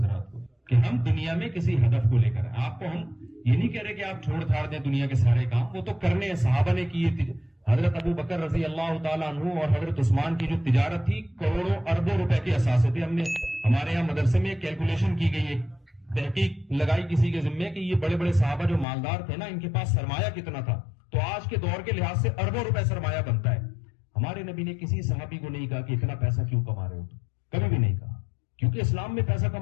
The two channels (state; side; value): drops out; right; at 18.9 s